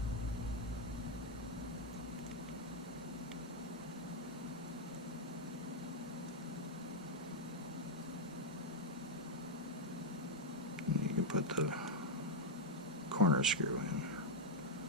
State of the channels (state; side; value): normal; both; correlation 0.00